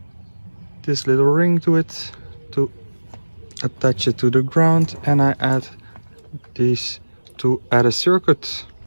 this little ring to it to attach it to the ground, and I add these to add a circuit.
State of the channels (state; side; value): inverted; both; correlation -1.00